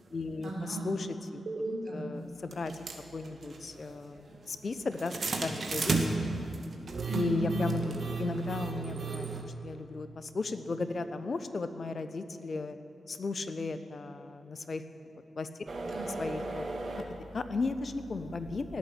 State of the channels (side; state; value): both; normal; correlation 0.84